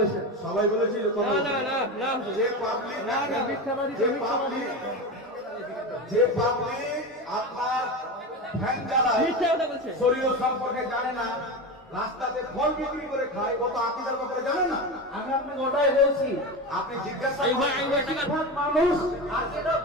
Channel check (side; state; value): both; normal; correlation 0.22